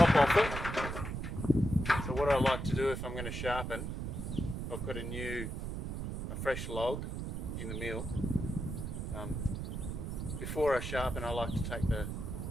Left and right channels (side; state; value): right; noise; rumble, 4 dB below the sound